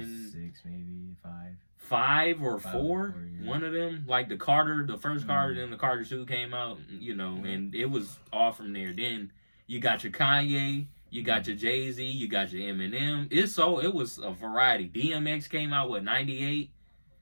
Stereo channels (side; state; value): both; inverted; correlation -1.00